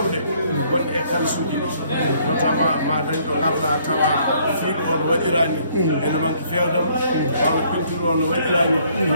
gonɗe e kalsuji notamment ma dañ ɗo garɗa tawa fiiɗo o no waɗirani ene manque fewdam walla peinture o no waɗirani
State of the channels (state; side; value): inverted; both; correlation -0.64